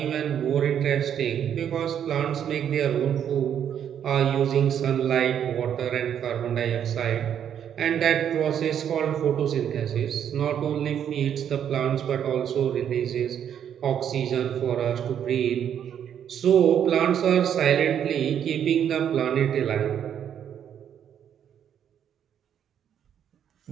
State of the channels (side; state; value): left; quieter; 9.1 dB